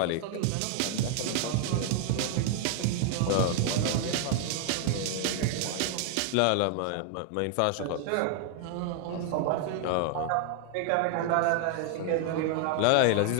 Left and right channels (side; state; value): both; different; correlation 0.00